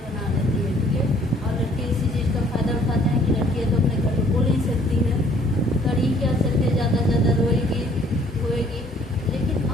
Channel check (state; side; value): normal; both; correlation 0.59